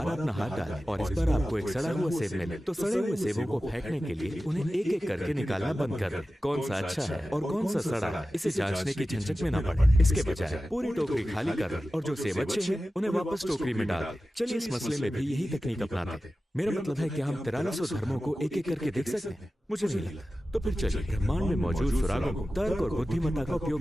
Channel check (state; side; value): normal; both; correlation 0.95